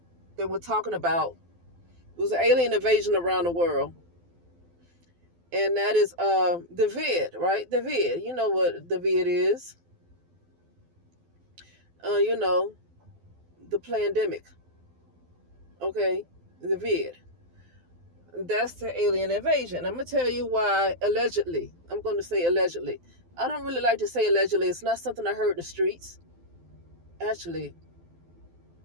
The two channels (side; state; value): left; late; 12 ms